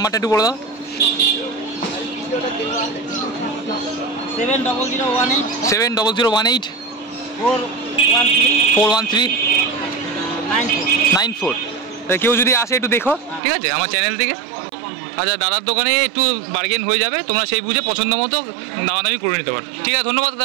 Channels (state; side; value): drops out; left; at 13.4 s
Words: একটু বলে দাও। 7018 41394। কেউ যদি আসে একটু দেখো, ঠিক আছে, আমার চ্যানেল থেকে। আচ্ছা, দাদার দোকানে একটু বার্গেন হয়ে যাবে, তোমরা সেই বুঝে পছন্দ মতো দামাদামি করে নিতে পারো। ঠিক আছে, ধন্যবাদ